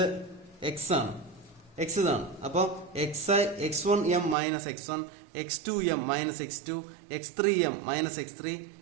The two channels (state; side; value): drops out; left; at 4.4 s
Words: x ആണ്. എക്സ് ഇതാണ്. അപ്പോൾ x1m minus x1, x2m minus x2, x3m minus x3